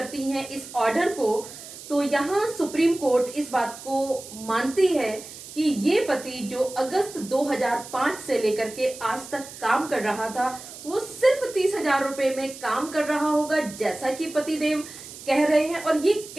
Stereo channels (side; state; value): right; noise; hiss, 14 dB below the sound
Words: हैं इस ऑर्डर को, तो यहाँ सुप्रीम कोर्ट इस बात को मानती है कि ये पति जो अगस्त 2005 से लेकर के आज तक काम कर रहा था वो सिर्फ 30,000 रुपए में काम कर रहा होगा, जैसा कि पतिदेव कह रहे हैं। और ये